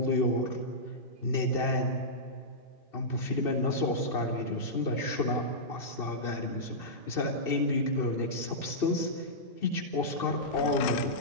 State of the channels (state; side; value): late; right; 2.7 ms